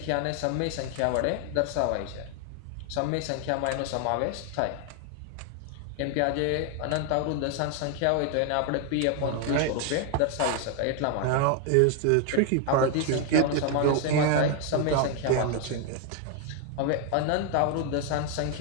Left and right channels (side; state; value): both; different; correlation 0.01